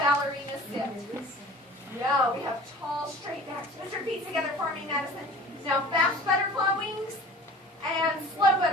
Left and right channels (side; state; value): both; normal; correlation 0.43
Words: sit. Yeah, we have tall, straight backs. Put your feet together for me, Madison. Now fast butterfly wings and slow